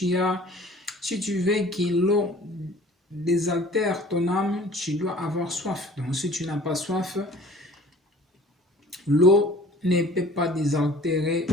veux que l'eau désaltère ton âme, tu dois avoir soif. Donc si tu n'as pas soif, l'eau ne peut pas désaltérer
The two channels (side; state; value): both; normal; correlation 0.49